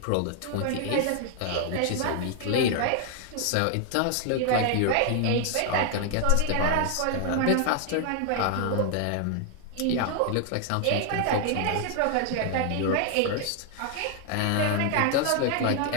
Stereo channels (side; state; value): both; different; correlation 0.00